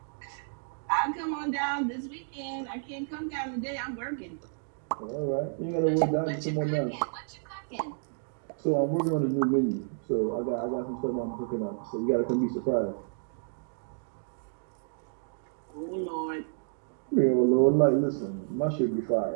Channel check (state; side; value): silent; left; digital silence